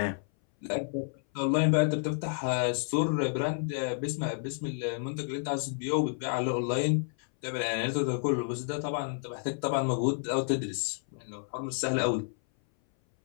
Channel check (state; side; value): silent; right; 58 dB below the other